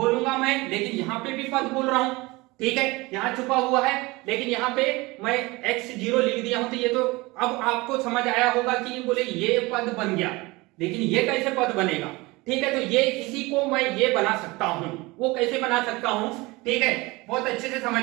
मैं, लेकिन यहाँ पे भी पद बोल रहा हूं, ठीक है, यहाँ छुपा हुआ है, लेकिन यहाँ पे मैं x0 लिख दिया हूं, तो ये तो अब आपको समझ आया होगा कि बोले ये पद बन गया, लेकिन ये कैसे पद बनेगा, ठीक है। तो ये इसी को मैं ये बना सकता हूं, वो कैसे बना सकता हूं, ठीक है, बहुत अच्छे से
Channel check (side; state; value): left; quieter; 22.8 dB